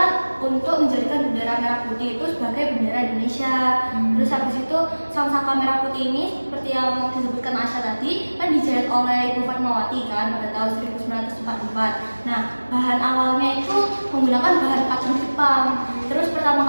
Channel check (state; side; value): inverted; both; correlation -1.00